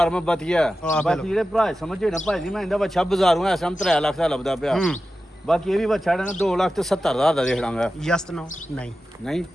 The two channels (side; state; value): both; normal; correlation 0.93